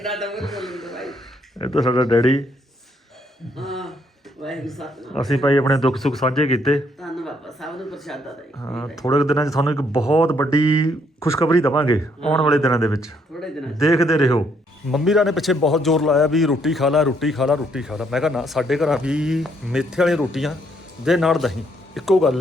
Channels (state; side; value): normal; both; correlation 0.70